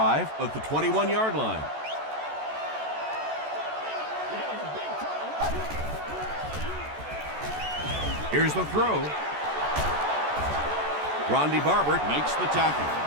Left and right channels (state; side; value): late; left; 14 ms